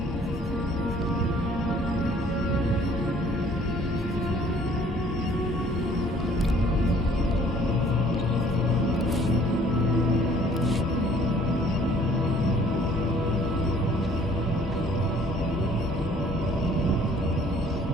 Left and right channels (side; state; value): both; normal; correlation 0.57